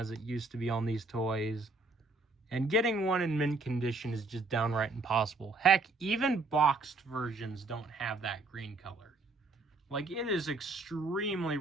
it used to be on these toys. And getting one in mint condition is just downright impossible. Heck, even boxed versions don't have that green color. Like, it is extremely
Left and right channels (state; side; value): quieter; left; 3.4 dB